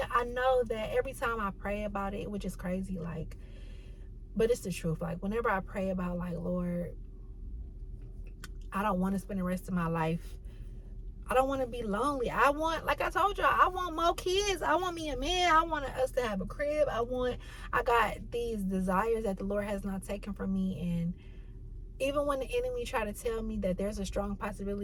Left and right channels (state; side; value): identical; both; correlation 1.00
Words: I know that every time I pray about it, which is crazy, like, but it's the truth. Like, whenever I pray about, like, Lord, I don't want to spend the rest of my life, I don't want to be lonely. I want, like I told y'all, I want more kids. I want me a man. I want us to have a crib. I got these desires that the Lord has not taken from me. And even when the enemy try to tell me that there's a strong